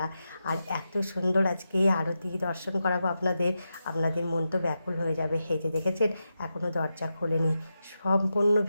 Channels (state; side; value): inverted; both; correlation -0.89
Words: আর এত সুন্দর আজকে আরতি দর্শন করাবো আপনাদের, আপনাদের মন তো ব্যাকুল হয়ে যাবে। এই যে দেখেছেন এখনও দরজা খোলেনি। সম্পূর্ণ